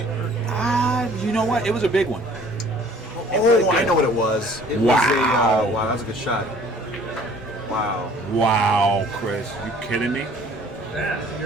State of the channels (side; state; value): both; normal; correlation 0.54